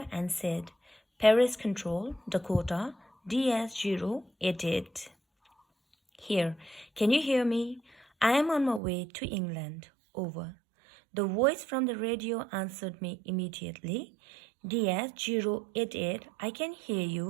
and said, Paris Control, Dakota, DS088. Here, can you hear me? I am on my way to England. Over. The voice from the radio answered me immediately. DS088, I can hear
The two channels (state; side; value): drops out; left; at 8.8 s